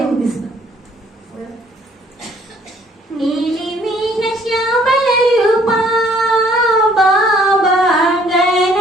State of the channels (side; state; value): both; normal; correlation 0.60